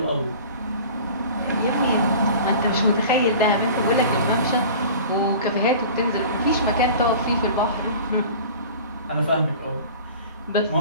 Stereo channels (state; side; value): inverted; both; correlation -0.40